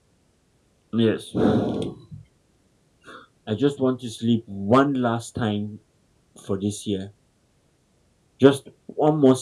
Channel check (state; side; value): identical; both; correlation 1.00